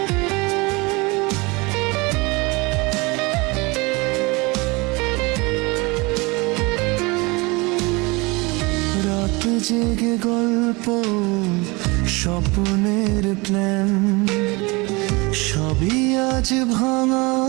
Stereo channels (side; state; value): left; quieter; 25.7 dB